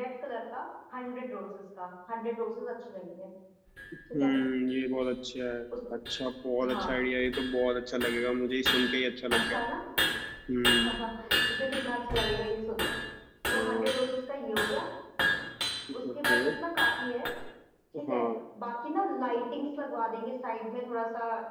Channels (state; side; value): identical; both; correlation 1.00